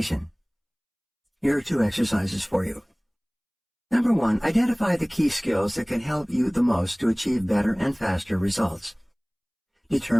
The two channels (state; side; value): identical; both; correlation 1.00